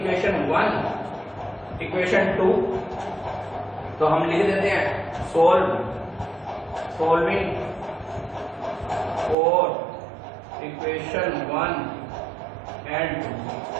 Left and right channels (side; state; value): left; drops out; at 9.3 s